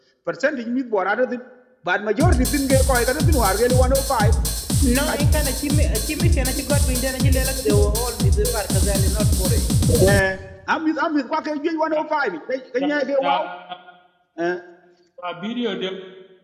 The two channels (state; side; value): identical; both; correlation 1.00